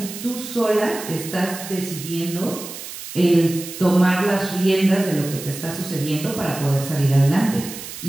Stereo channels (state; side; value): noise; right; hiss, 11 dB below the sound